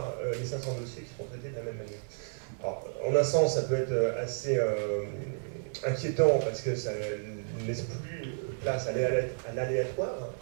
les 500 dossiers qui seront traités de la même manière. Alors, en un sens, ça peut être assez inquiétant parce que ça ne laisse plus place à l'aléatoire,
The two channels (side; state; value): left; silent; digital silence